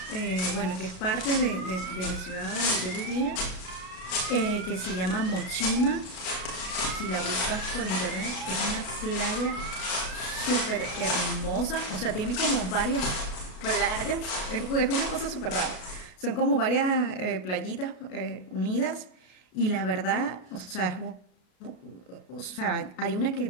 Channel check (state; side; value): late; right; 33 ms